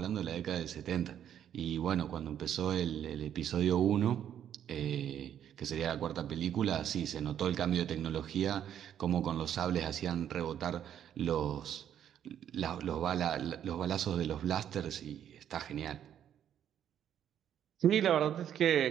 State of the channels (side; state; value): left; quieter; 9.8 dB